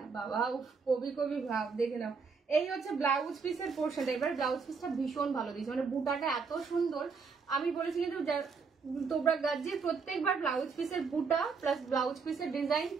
বাবা কবি ভাব। দেখে নাও এই হচ্ছে ব্লাউজ পিসের পোর্শনটা। এবার ব্লাউজ পিসটা ভীষণ ভালো দিয়েছে, মানে বুটাটা এত সুন্দর। আমি বলেছি কিন্তু তোমরা গাজ্জির প্রত্যেকবার ব্লাউজ পিসের বুটা প্লাস ব্লাউজ পিসের ডিজাইন,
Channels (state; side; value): quieter; left; 5.2 dB